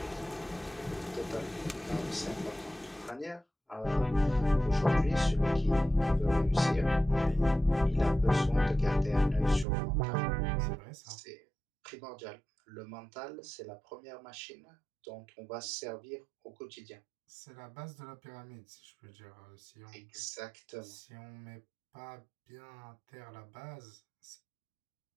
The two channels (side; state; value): left; drops out; at 9.7 s